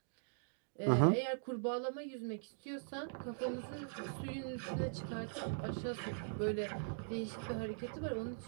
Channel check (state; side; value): silent; left; digital silence